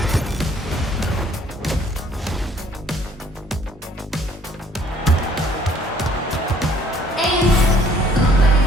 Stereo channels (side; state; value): both; normal; correlation 0.59